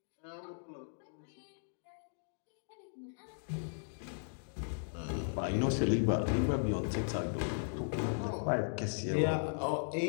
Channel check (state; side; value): silent; right; digital silence